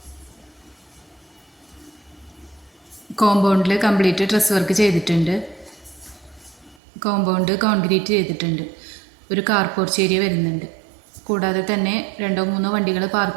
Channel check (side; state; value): left; drops out; at 6.8 s